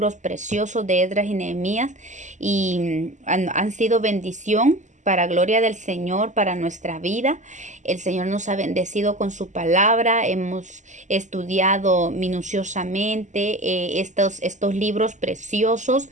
preciosos de Esdras y Nehemías y han sido bendición para gloria del Señor, para nuestra vida. El Señor nos ha bendecido con su palabra. Hemos estudiado minuciosamente estos libros preciosos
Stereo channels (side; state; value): left; late; 0.35 ms